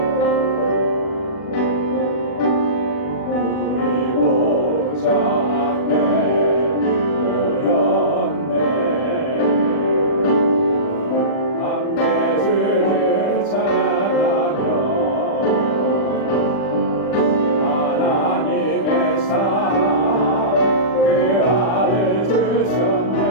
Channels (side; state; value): right; late; 39 ms